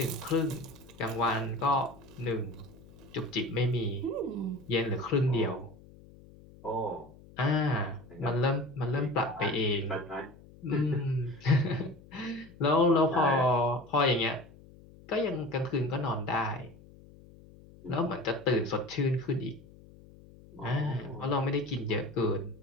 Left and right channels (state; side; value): noise; left; hum, 22 dB below the sound